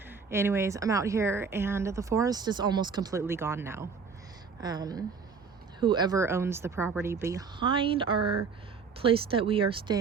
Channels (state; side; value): quieter; left; 5.5 dB